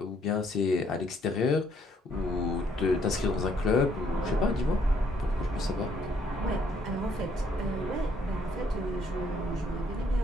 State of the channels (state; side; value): normal; both; correlation 0.67